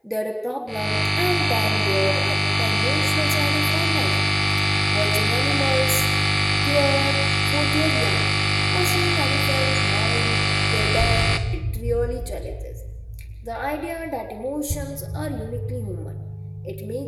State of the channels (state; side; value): identical; both; correlation 1.00